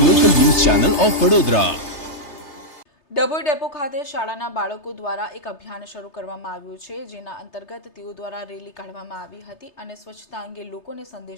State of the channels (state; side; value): late; right; 3.3 ms